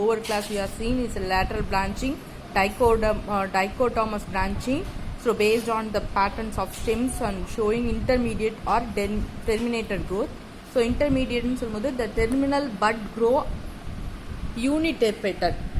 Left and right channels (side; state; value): both; identical; correlation 1.00